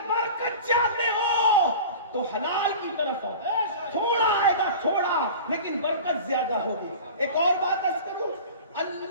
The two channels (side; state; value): both; inverted; correlation -0.36